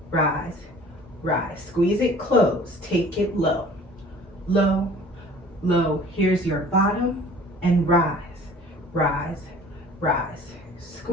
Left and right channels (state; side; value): normal; both; correlation 0.48